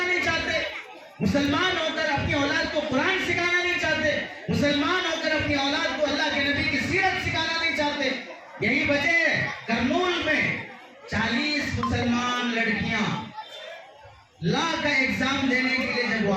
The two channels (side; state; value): both; identical; correlation 1.00